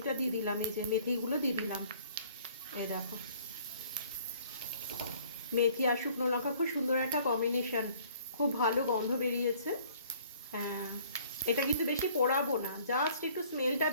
দিয়ে দিলাম, এই যে মেথিগুলো দিয়ে দিলাম, এই দেখো মেথি আর শুকনো লঙ্কা খুব সুন্দর একটা কম্বিনেশন, খুব ভালো গন্ধ বেরিয়েছে। হ্যাঁ, এটা কিন্তু বেশি পোড়াবো না, জাস্ট একটু স্মেলটা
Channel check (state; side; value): inverted; both; correlation -0.57